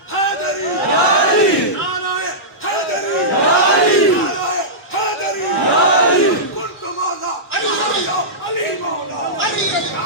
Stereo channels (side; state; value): both; normal; correlation -0.14